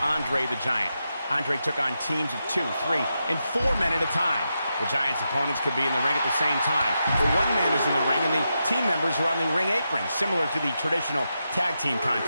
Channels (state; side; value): inverted; both; correlation -0.86